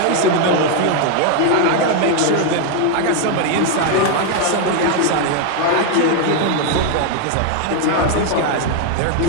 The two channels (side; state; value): both; different; correlation 0.00